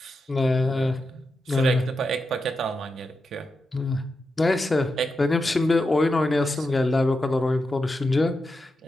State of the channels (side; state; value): both; normal; correlation 0.88